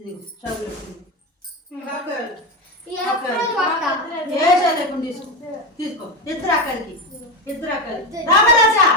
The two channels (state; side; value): normal; both; correlation 0.16